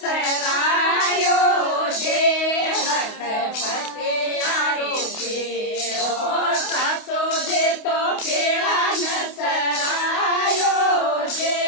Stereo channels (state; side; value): late; right; 28 ms